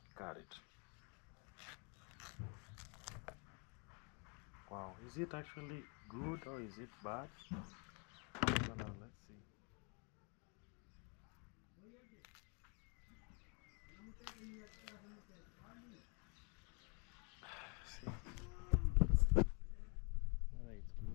cut it. Wow, is it actually good or is it bad? So now let's see. See. Alright, it's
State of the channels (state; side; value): quieter; right; 35.5 dB